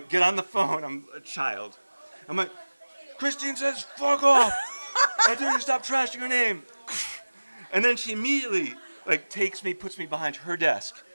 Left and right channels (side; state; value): both; inverted; correlation -1.00